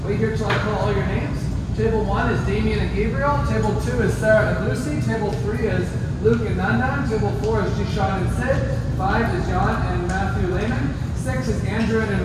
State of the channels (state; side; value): identical; both; correlation 1.00